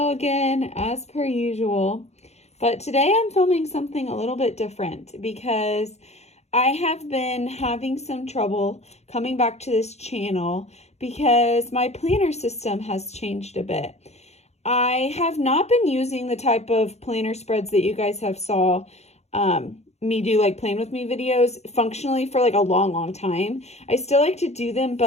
again as per usual, but today I'm filming something a little bit different because I have been having some trouble coming back to this channel because my planner system has changed a bit. I have not been using the type of planner spreads that you guys have saw me do like plan with me videos functionally for like a long time. I still like to do them,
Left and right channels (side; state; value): right; late; 0.31 ms